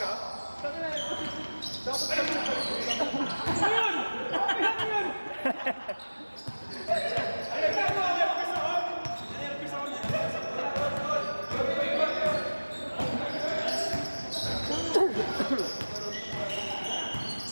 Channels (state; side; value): inverted; both; correlation -1.00